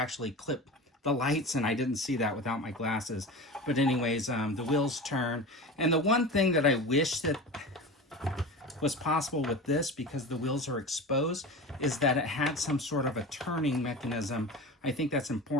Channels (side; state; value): both; normal; correlation 0.30